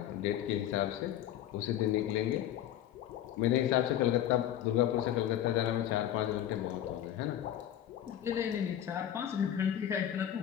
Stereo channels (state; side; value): quieter; right; 11.4 dB